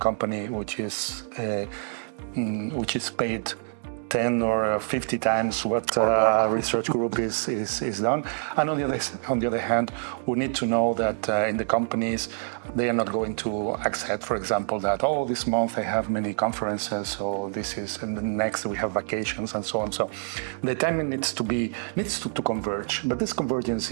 which is paid 10 or 50 times what a research group is done. And on the other hand, we need to know that in the companies, they are not going to accept, for example, that, oh, this month I have many conferences, so this is, and the next we have vacations and so on. So the timing needs to converge, but this convergence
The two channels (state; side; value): silent; left; digital silence